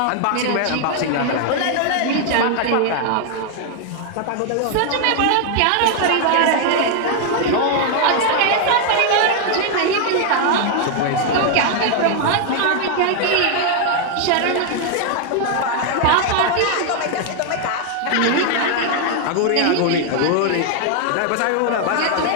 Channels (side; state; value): both; different; correlation 0.00